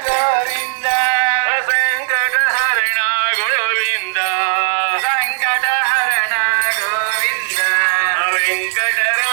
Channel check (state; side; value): silent; left; digital silence